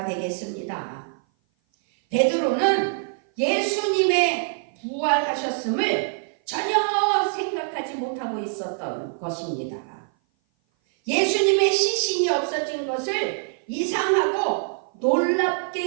되겠습니다. 베드로는 예수님의 부활하셨음을 전혀 생각하지 못하고 있었던 것입니다. 예수님의 시신이 없어진 것을 이상하고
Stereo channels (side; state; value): left; silent; 57 dB below the other